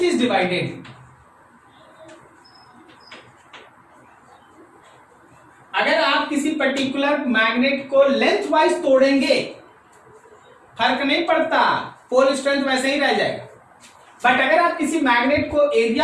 is divided। अगर आप किसी पर्टिकुलर मैग्नेट को लेंथ वाइज तोड़ेंगे फर्क नहीं पड़ता, पोल स्ट्रेंथ वैसे ही रह जाएगा। बट अगर आप किसी मैग्नेट को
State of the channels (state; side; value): identical; both; correlation 1.00